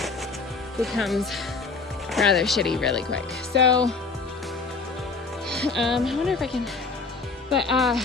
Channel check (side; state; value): right; quieter; 4.3 dB